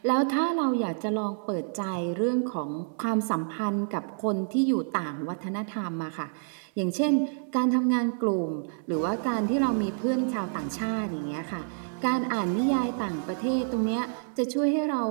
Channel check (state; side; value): silent; left; 59 dB below the other